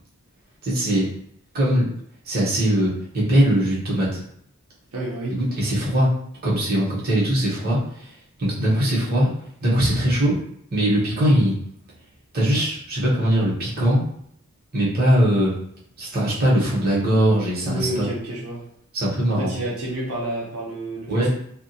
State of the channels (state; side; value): normal; both; correlation 0.71